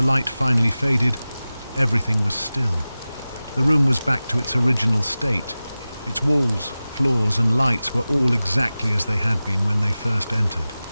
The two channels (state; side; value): inverted; both; correlation -0.97